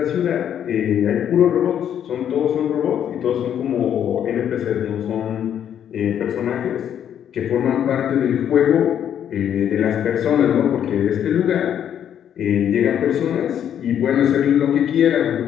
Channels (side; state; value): right; quieter; 9.5 dB